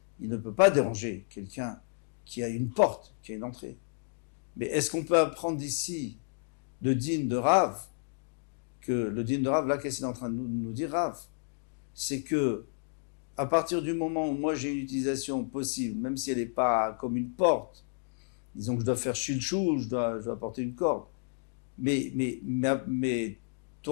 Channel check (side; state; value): right; silent; digital silence